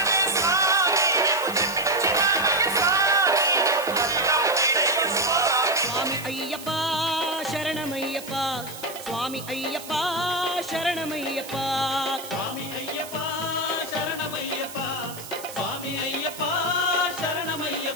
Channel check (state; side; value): noise; right; hiss, 14 dB below the sound